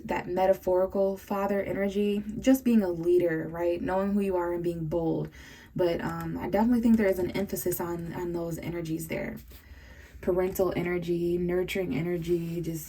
that metaphorical father energy, just being a leader, right? Knowing who you are and being bold. But I definitely think there is an emphasis on those energies there. Parental energy, nurturing energy,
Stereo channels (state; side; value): identical; both; correlation 1.00